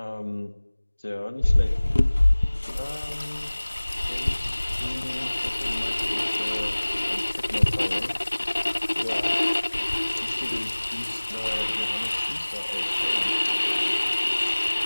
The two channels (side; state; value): both; inverted; correlation -1.00